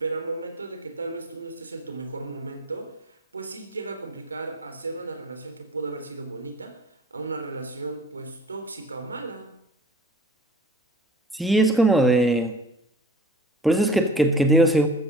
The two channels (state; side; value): normal; both; correlation 0.44